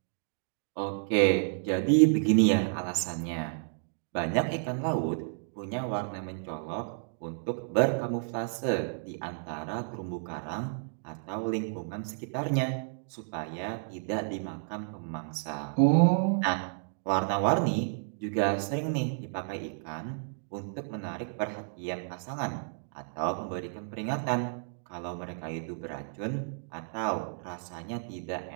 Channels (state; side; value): silent; left; digital silence